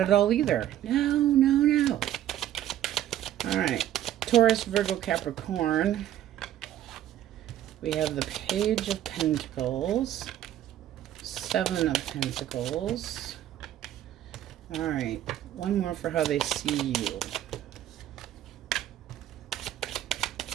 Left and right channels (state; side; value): quieter; left; 12.0 dB